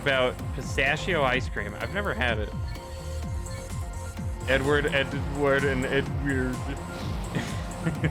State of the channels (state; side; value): identical; both; correlation 1.00